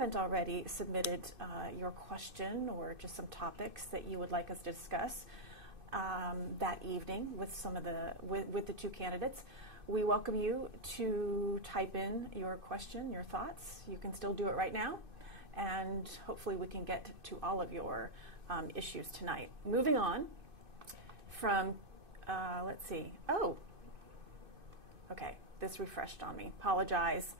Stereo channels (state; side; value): late; left; 2.5 ms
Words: already submitted your question or just some topics that you would like us to discuss that evening with some of with the two candidates, we welcome you to type in your question, your thoughts. You can still do it right now, and hopefully we can get to all of your issues tonight. Moving on from, let's see. Oh, okay. This refreshed on me. Apologize.